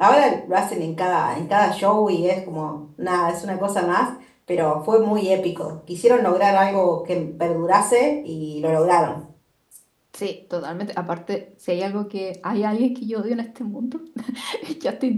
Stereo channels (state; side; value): identical; both; correlation 1.00